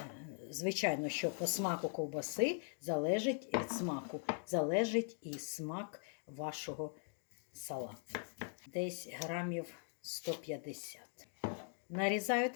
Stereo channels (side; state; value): right; silent; 50 dB below the other